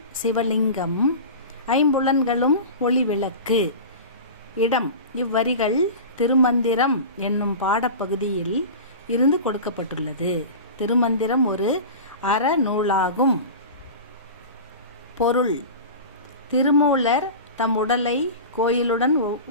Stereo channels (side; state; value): both; inverted; correlation -0.31